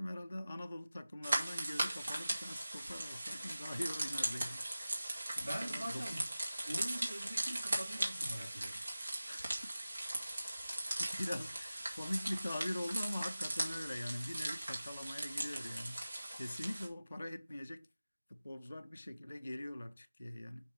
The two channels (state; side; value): inverted; both; correlation -0.96